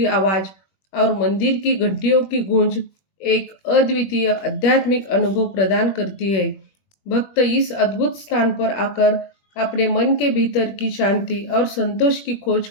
आवाज और मंदिर की घंटियों की गूंज एक अद्वितीय आध्यात्मिक अनुभव प्रदान करती है। भक्त इस अद्भुत स्थान पर आकर अपने मन के भीतर की शांति और संतोष की खोज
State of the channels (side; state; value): right; late; 21 ms